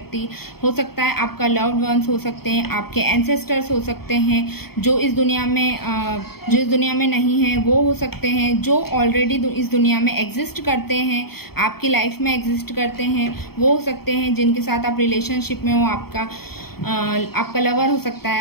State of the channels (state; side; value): late; right; 0.95 ms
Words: हो सकता है, आपका लव्ड वंस हो सकते हैं, आपके एंसेस्टर्स हो सकते हैं, जो इस दुनिया में नहीं है वो हो सकते हैं, जो ऑलरेडी इस दुनिया में एग्जिस्ट करते हैं, आपकी लाइफ में एग्जिस्ट करते हैं, वो हो सकते हैं जिनके साथ आप रिलेशनशिप में हो। आपका लवर हो सकता है,